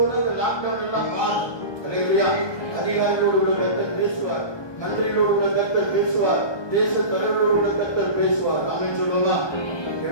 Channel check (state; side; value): late; right; 1.2 ms